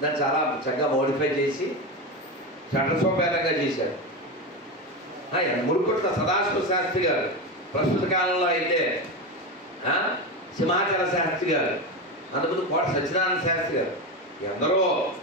దాన్ని చాలా చక్కగా మోడిఫై చేసి చట్టసోపేతంగా చేశారు. మురుకుట్ల సదాశివ శాస్త్రి గారు, ప్రస్తుత కాలంలో అయితే సింహాచల శాస్త్రి గారు, అంతకుముందు కోట సత్యనారాయణ శాస్త్రి గారు, ఎందరో.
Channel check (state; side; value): normal; both; correlation 0.18